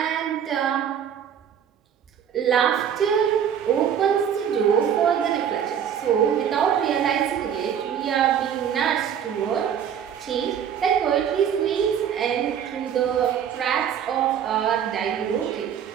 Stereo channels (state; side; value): quieter; left; 8.6 dB